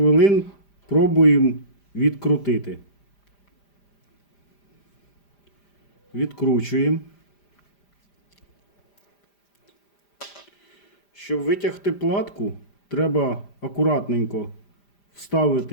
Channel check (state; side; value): late; right; 5.0 ms